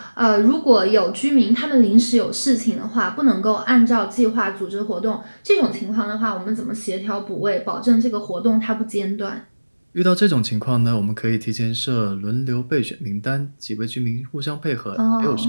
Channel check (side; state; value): both; inverted; correlation -1.00